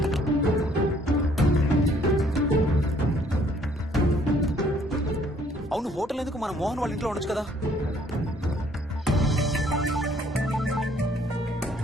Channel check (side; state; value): both; normal; correlation 0.62